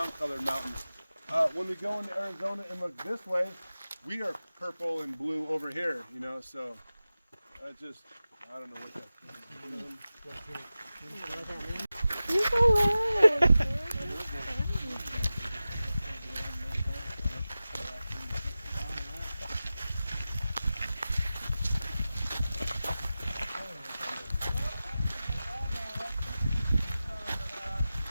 colored mountains. When we go into Arizona and look this way, we are purple and blue over here, you know, so that's just, I don't know what that's.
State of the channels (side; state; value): both; inverted; correlation -0.95